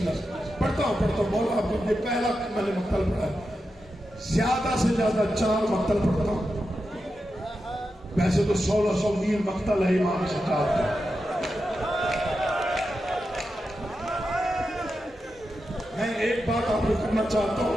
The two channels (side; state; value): both; normal; correlation 0.89